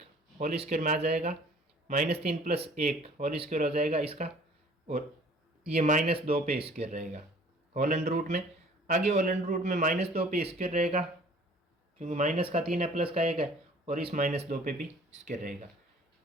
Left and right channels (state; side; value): normal; both; correlation 0.52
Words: होल स्क्वायर में आ जाएगा, -3 प्लस 1 होल स्क्वायर हो जाएगा इसका, और ये -2 पे स्क्वायर रहेगा होल अंडर रूट में। आगे होल अंडर रूट में -2 पे स्क्वायर रहेगा क्योंकि माइनस का 3 है प्लस का 1 है, और इस -2 पे भी स्क्वायर रहेगा।